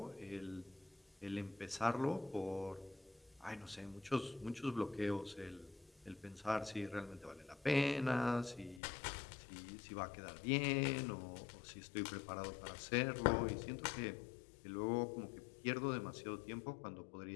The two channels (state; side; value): drops out; right; at 8.8 s